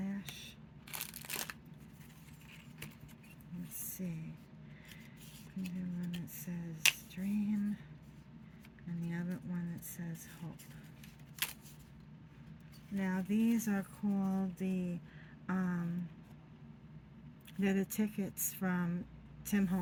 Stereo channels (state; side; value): identical; both; correlation 1.00